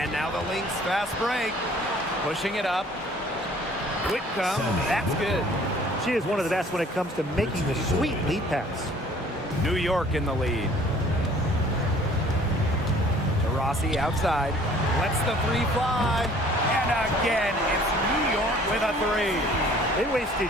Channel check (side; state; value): both; normal; correlation 0.54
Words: now the Lynx fast break. Pushing it up. Whitcomb, that's good. She is one of the best when it comes to making the sweet lead pass. New York in the lead. Taurasi outside. Lets the 3 fly. And again, it's New York with a 3. They